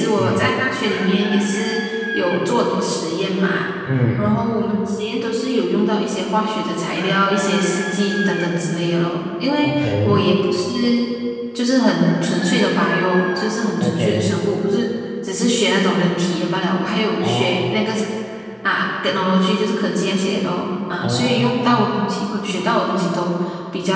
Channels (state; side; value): identical; both; correlation 1.00